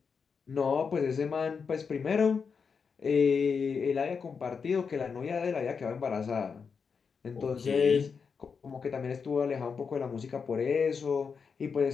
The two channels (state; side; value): quieter; right; 5.8 dB